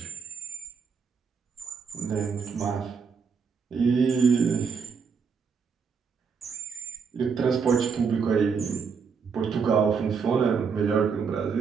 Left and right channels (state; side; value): quieter; left; 5.8 dB